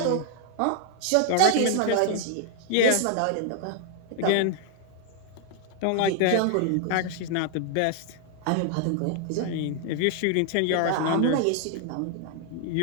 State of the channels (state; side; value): different; both; correlation 0.00